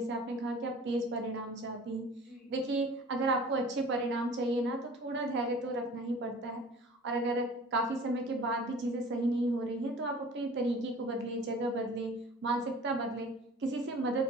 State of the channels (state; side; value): normal; both; correlation 0.45